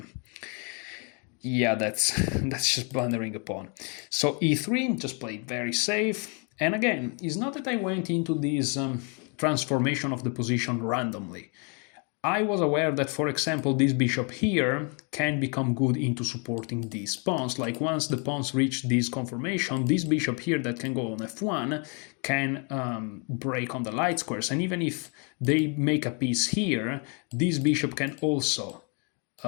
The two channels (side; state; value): right; quieter; 36.3 dB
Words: yeah, that's just blundering a pawn. So e3, just played very safe. And again, it's not that I went into this transformation of the position randomly. I was aware that, for example, this bishop here can become good into supporting these pawns. Like once the pawns reach this conformation, this bishop here that can go on f1 can break on the light squares. And even if they make a piece here, this bishop can also